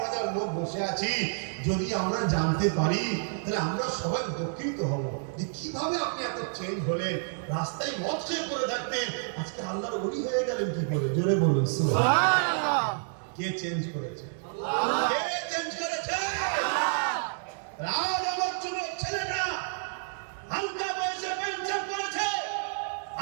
হাজার লোক বসে আছি, যদি আমরা জানতে পারি তাহলে আমরা সবাই উপকৃত হব যে কিভাবে আপনি এত চেঞ্জ হলেন। রাস্তায় মদ খেয়ে পড়ে থাকতেন, আজকে আল্লাহর ওলি হয়ে গেলেন কি করে? জোরে বলুন সুবহানাল্লাহ। কে চেঞ্জ করেছে? কে চেঞ্জ করেছে? রাজ আমার যুবক ছেলেটা হালকা বয়সে পেনশন করেছে,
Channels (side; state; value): left; silent; digital silence